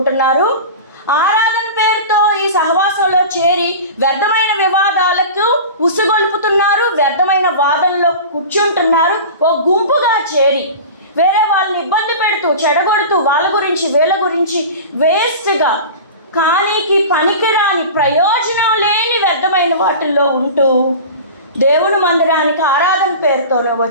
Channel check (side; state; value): both; inverted; correlation -0.33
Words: ఆరాధన పేరుతో ఈ సహవాసంలో చేరి వ్యర్థమైన వివాదాలకు ఉసుగొల్పుతున్నారు, వ్యర్థమైన వాదనలో కూర్చుంటున్నారు. ఓ గుంపుగా చేరి వేరే వాళ్ళని ఇబ్బంది పెడుతూ చెడగొడుతూ వాళ్ళ గురించి వీళ్ళ గురించి వేస్ట్గా కానీకి పనికిరాని ప్రయోజనం లేని వ్యర్థమైన వాటిల్లో ఉంటూ దేవుని మందిరానికి ఆరాధన పేరుతోనే